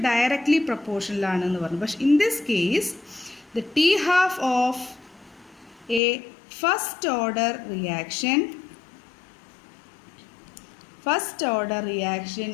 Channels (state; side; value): drops out; right; at 6.0 s